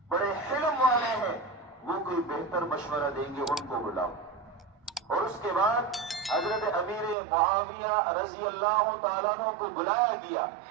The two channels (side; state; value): left; drops out; at 7.2 s